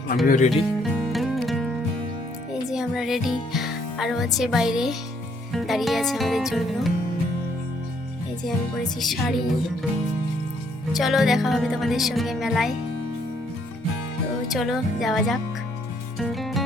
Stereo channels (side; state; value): both; normal; correlation 0.68